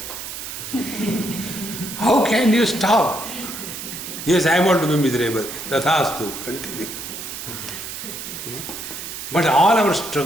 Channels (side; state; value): right; noise; hiss, 8 dB below the sound